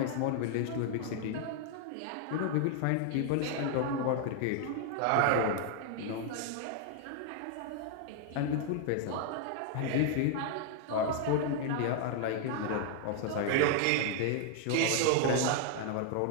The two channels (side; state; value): both; different; correlation 0.00